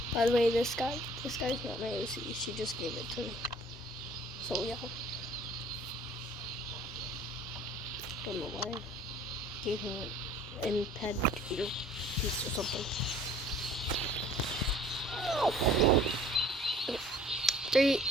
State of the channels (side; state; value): both; normal; correlation 0.52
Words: By the way, this guy's not my OC. She just gave it to me. So yeah. Don't know why. Gave him an imped piece or something. Okay. 3,